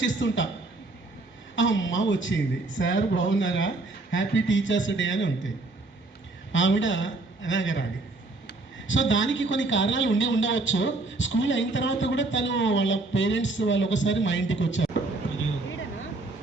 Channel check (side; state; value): left; quieter; 3.2 dB